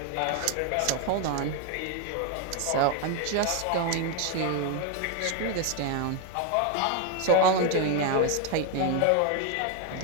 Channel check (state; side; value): different; both; correlation 0.01